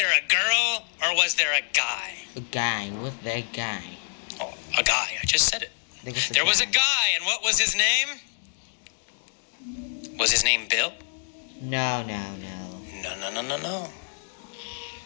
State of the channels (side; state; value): right; silent; digital silence